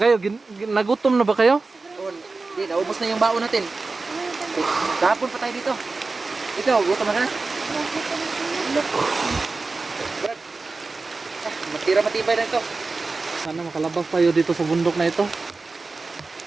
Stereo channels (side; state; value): left; quieter; 3.8 dB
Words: nagutom na ba kayo? Hindi, naubos na yung baon natin. Kahapon pa tayo dito. Ikaw, gutom na ka? Brad, matira matibay na ito. Sana makalabas tayo dito sa bundok na ito.